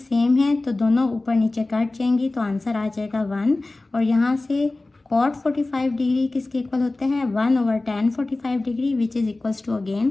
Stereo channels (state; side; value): quieter; right; 3.0 dB